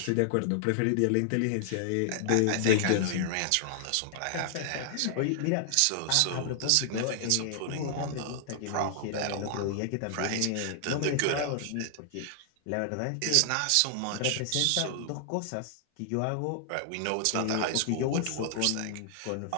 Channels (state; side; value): different; both; correlation 0.00